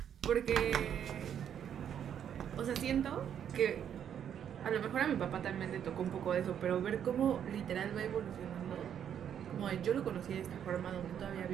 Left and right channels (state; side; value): quieter; left; 9.0 dB